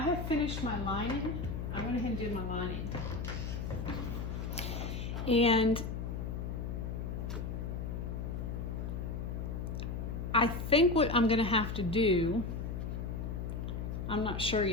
finished my lining. I went ahead and did my lining. And I think what I'm going to have to do, I'm not sure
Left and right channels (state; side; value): noise; left; hum, 4 dB below the sound